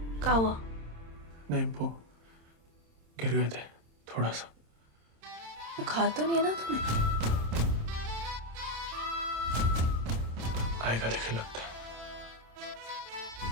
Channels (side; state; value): left; late; 27 ms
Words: क्या हुआ? नहीं, वो गिर गए थे थोड़ा सा। बुखार तो नहीं है ना तुम्हें? आएगा लेकिन लगता है।